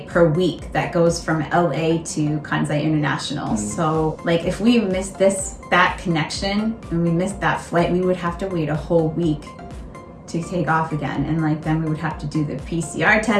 per week that goes from LA to Kansai International. So like if we missed that connection and we missed that flight, we would have to wait a whole week to take off again. And like then we would have to do the PCR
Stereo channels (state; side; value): identical; both; correlation 1.00